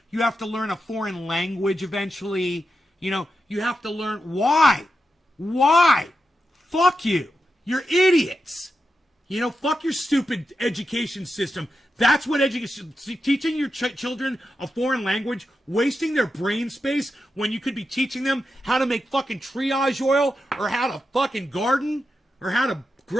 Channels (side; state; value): both; normal; correlation 0.88